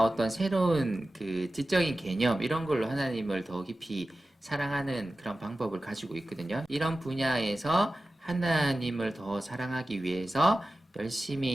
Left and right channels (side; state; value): both; normal; correlation 0.95